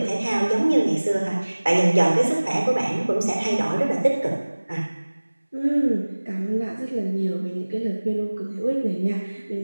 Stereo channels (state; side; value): inverted; both; correlation -1.00